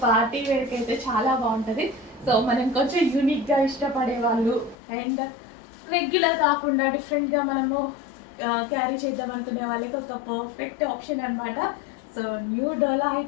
party వేర్కి అయితే చాలా బాగుంటుంది. సో మనం కొంచెం యూనిక్గా ఇష్టపడే వాళ్ళు అండ్ రెగ్యులర్ కాకుండా డిఫరెంట్గా మనము క్యారీ చేద్దాం అనుకునే వాళ్ళకి ఒక పర్ఫెక్ట్ ఆప్షన్ అనమాట. సో న్యూ డోలా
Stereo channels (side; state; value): right; drops out; at 4.8 s